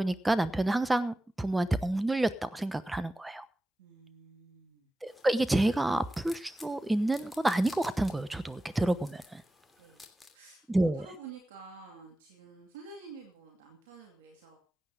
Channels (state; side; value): normal; both; correlation 0.95